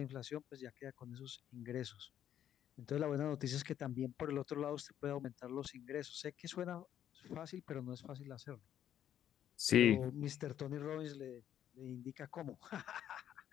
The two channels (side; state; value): right; quieter; 10.5 dB